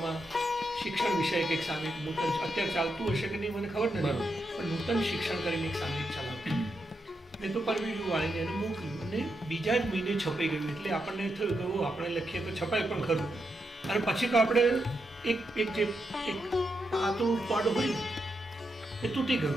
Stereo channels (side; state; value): both; normal; correlation 0.84